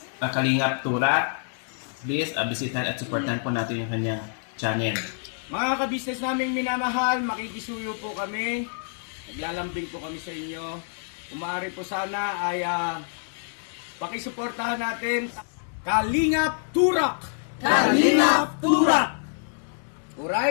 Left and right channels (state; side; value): silent; right; digital silence